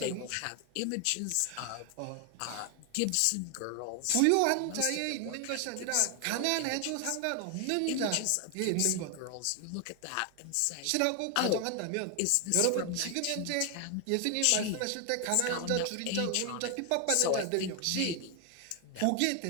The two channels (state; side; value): different; both; correlation 0.00